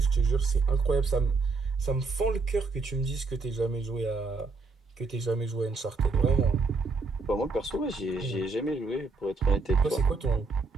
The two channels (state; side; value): quieter; left; 4.0 dB